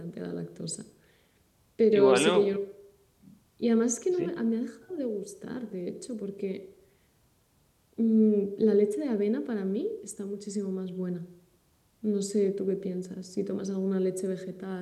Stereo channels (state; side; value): identical; both; correlation 1.00